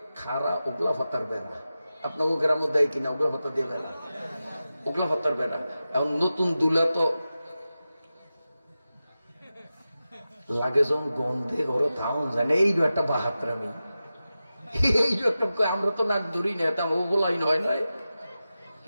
খাড়া ওগলা ফাতার বেড়া, আপনাকে গ্রামে দেয় কিনা ওগুলো ভাতা দিয়ে বেড়া, ওগুলো ভাতার বেড়া। এখন নতুন দুলা তো লাগে যখন গন্ধে ঘরে থাউন যায় না, এইটা একটা বাহাত্রামি, এইটা একটা। আমরা তো নাক ধরি না, এটা ওগুলাই নয় নয়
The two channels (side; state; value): both; inverted; correlation -0.93